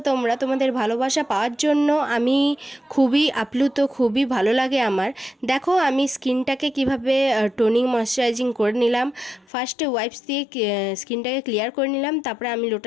তোমরা। তোমাদের ভালোবাসা পাওয়ার জন্য আমি খুবই আপ্লুত, খুবই ভালো লাগে আমার। দেখো আমি স্কিনটাকে কিভাবে টোনিং ময়শ্চারাইজিং করে নিলাম। ফার্স্টে ওয়াইপস দিয়ে স্কিনটাকে ক্লিয়ার করে নিলাম, তারপরে আমি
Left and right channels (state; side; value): drops out; right; at 9.5 s